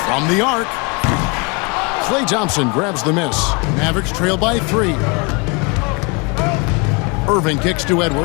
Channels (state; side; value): quieter; right; 30.2 dB